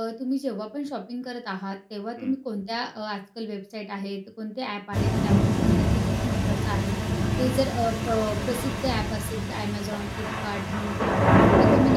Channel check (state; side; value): identical; both; correlation 1.00